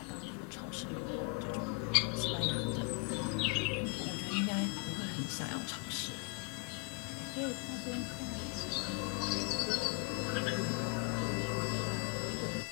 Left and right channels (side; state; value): right; quieter; 27.7 dB